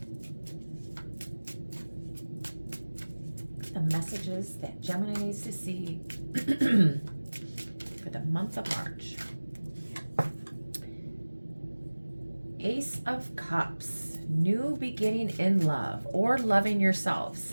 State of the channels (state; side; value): inverted; both; correlation -1.00